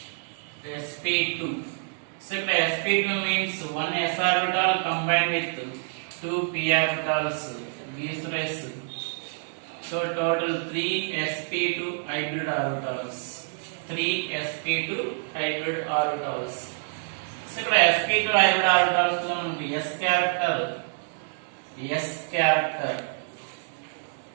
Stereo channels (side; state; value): left; silent; digital silence